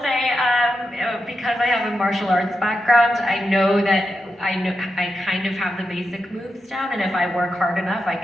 say, because I have a martial arts background, I know that I kind of have the basic moves down, and if I work hard enough, I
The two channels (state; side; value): normal; both; correlation 0.88